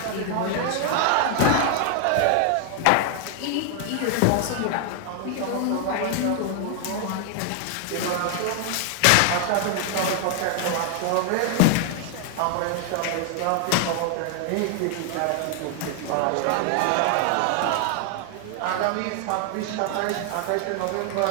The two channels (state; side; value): different; both; correlation 0.00